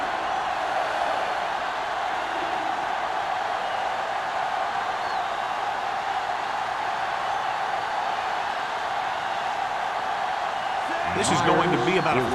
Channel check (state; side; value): identical; both; correlation 1.00